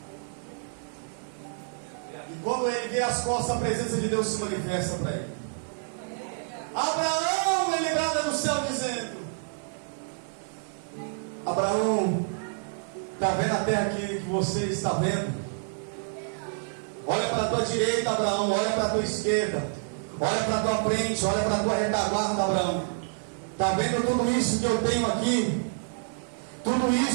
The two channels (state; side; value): silent; left; digital silence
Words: E quando ele vê as costas, a presença de Deus se manifesta para ele. Abraão, ele brada no céu dizendo: Abraão, está vendo a terra que você está vendo? Olha para a tua direita, Abraão, olha para a tua esquerda, olha para a tua frente, olha para a tua retaguarda, Abraão. Está vendo tudo isso que eu tenho aqui? Tudo